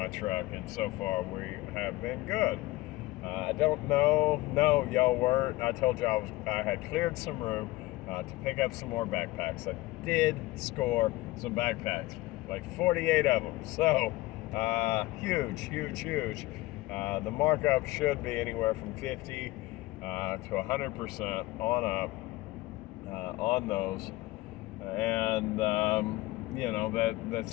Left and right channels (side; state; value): right; quieter; 19.2 dB